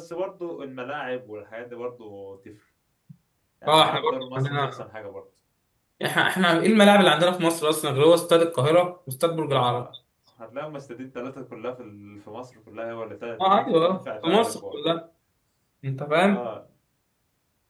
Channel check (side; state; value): both; identical; correlation 1.00